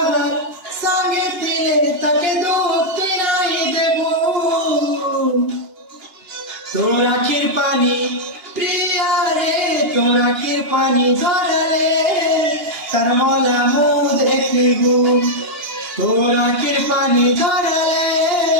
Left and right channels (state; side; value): late; left; 2.8 ms